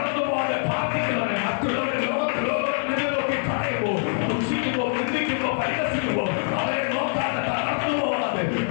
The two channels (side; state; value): right; silent; digital silence